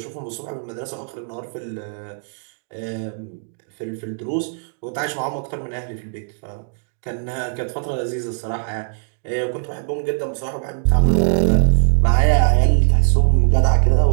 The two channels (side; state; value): left; silent; digital silence